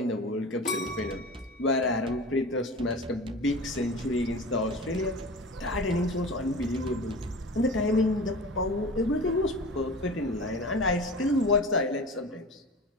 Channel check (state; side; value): normal; both; correlation 0.34